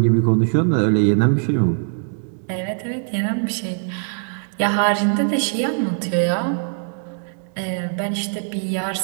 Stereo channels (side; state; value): left; silent; digital silence